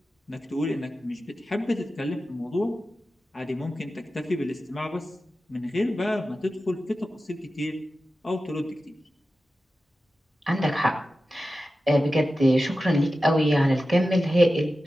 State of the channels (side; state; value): both; normal; correlation 0.93